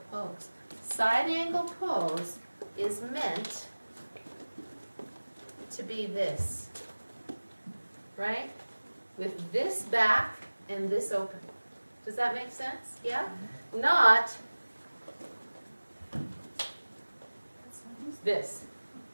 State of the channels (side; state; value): both; inverted; correlation -1.00